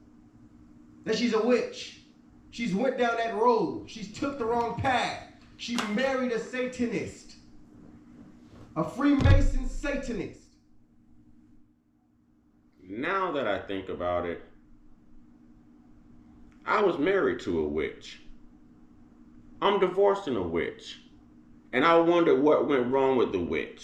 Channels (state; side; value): identical; both; correlation 1.00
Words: That she's a witch. She's went down that road. She's took the wrong path. She married a Satanist. A Freemason Satanist. Now that I think about it, I was married to a witch. I'm divorcing a witch. And I wondered what went wrong with the